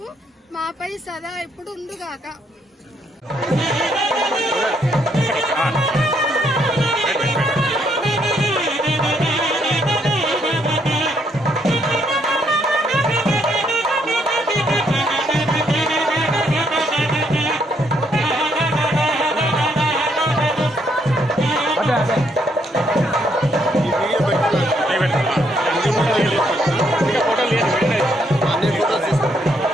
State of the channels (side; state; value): both; normal; correlation 0.73